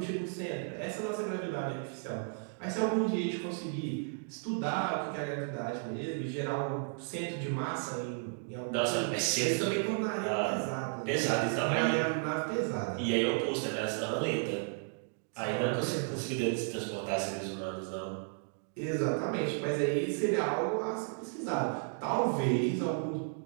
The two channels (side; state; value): left; silent; 55 dB below the other